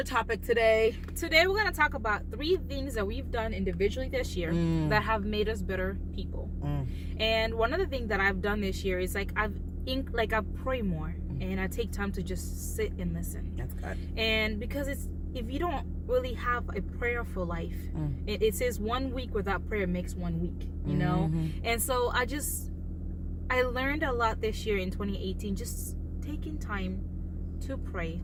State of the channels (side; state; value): both; identical; correlation 1.00